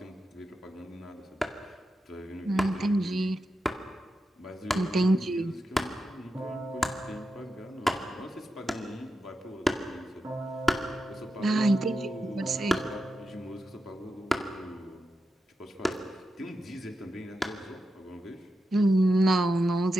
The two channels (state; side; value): normal; both; correlation 0.89